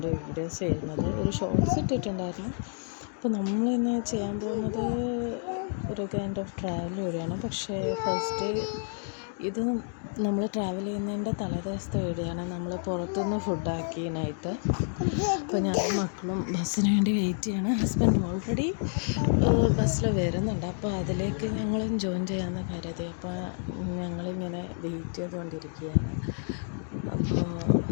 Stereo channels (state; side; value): silent; right; 56 dB below the other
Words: വീഡിയോസ് ചെയ്യുന്നത്. ഒരു ഷോർട്സ് ഇട്ടിട്ടുണ്ടായിരുന്നു. അപ്പോൾ നമ്മളിന്ന് ചെയ്യാൻ പോകുന്നത് ഒരു കൈൻഡ് ഓഫ് ട്രാവൽ വീഡിയോയാണ്. പക്ഷേ ഫസ്റ്റ് ഇത് നമ്മൾ ട്രാവൽ ചെയ്യുന്നതിൻ്റെ തലേദിവസത്തെ വീഡിയോയാണ്. നമ്മൾ പുറത്തുനിന്ന് ഫുഡാക്കി നൈറ്റ്. അപ്പോൾ ഞാൻ മക്കളും ബസ്സിന് വേണ്ടി വെയിറ്റ് ചെയ്യാണ്. ഹസ്ബൻഡ് ഓൾറെഡി ബസ്സിൽ വരുന്നുണ്ട്. അപ്പോൾ അതിലേക്ക് ഞങ്ങളും ജോയിൻ ചെയ്യാമെന്ന് കരുതി. അപ്പോൾ ഞങ്ങളിങ്ങനെ വെയിറ്റ് ചെയ്തുകൊണ്ടിരിക്കുകയാണ്. അപ്പോൾ